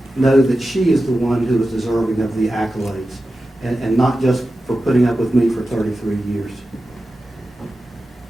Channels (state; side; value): normal; both; correlation 0.93